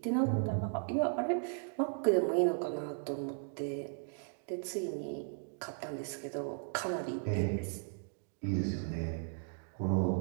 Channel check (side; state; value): left; silent; digital silence